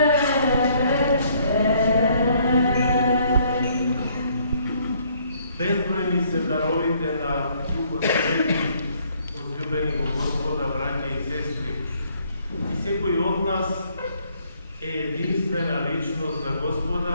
Безбројни се даровите на Духот Свети, возлюбени во Господа, браќа и сестри. И секој од нас е единствена личност за Господа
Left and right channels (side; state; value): both; inverted; correlation -0.65